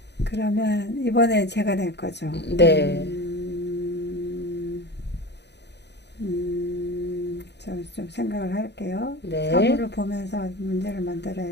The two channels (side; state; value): right; late; 0.50 ms